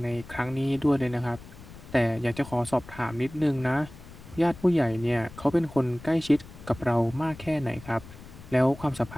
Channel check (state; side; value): noise; left; rumble, 17 dB below the sound